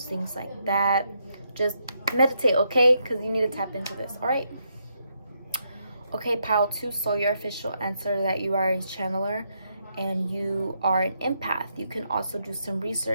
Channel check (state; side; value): inverted; both; correlation -0.78